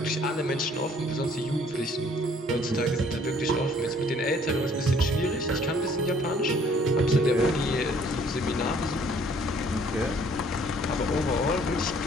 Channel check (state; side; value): normal; both; correlation 0.59